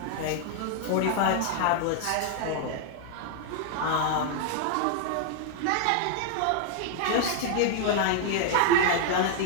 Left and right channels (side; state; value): both; different; correlation 0.00